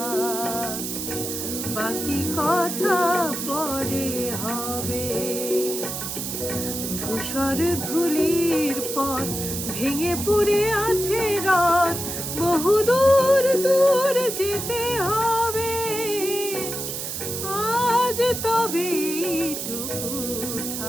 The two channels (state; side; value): noise; right; hiss, 5 dB below the sound